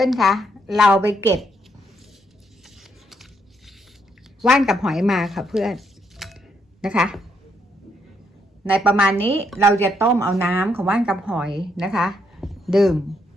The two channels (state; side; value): normal; both; correlation 0.75